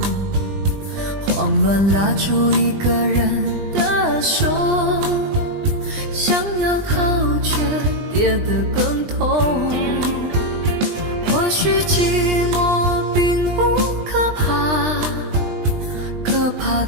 慌乱拉住一个人的手，想要逃却跌得更痛。或许寂寞并不可怕，可怕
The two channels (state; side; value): late; left; 20 ms